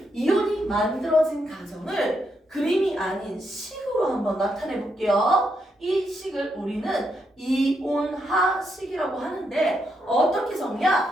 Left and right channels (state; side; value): normal; both; correlation 0.80